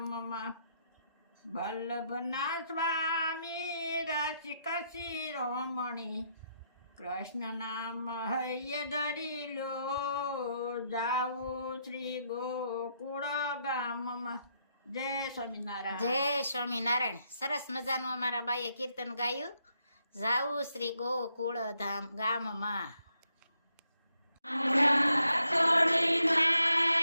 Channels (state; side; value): inverted; both; correlation -0.78